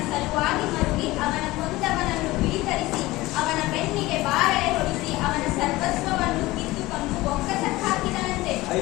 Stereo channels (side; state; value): right; quieter; 19.2 dB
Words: ಸಲುವಾಗಿ ಮರುಗಿ ಅವನ ಕೊಂದವನನ್ನು ಬಿಡಿತರಿಸಿ ಅವನ ಬೆನ್ನಿಗೆ ಬಾರಳೆ ಹೊಡಿಸಿ ಅವನ ಸರ್ವಸ್ವವನ್ನು ಕಿತ್ತುಕೊಂಡು ಬೊಕ್ಕಸಕ್ಕೆ ಹಾಕಿದನಂತೆ.